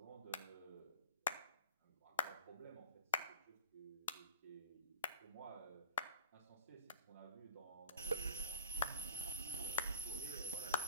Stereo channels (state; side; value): inverted; both; correlation -0.38